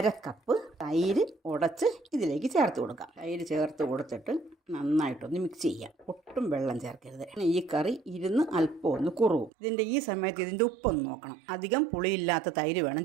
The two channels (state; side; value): drops out; left; at 9.5 s